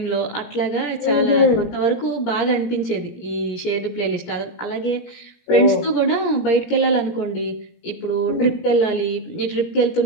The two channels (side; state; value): right; late; 17 ms